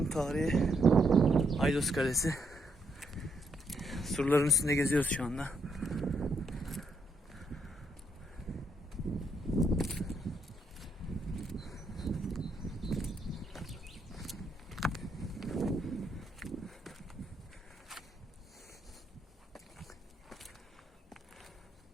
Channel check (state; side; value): normal; both; correlation 0.76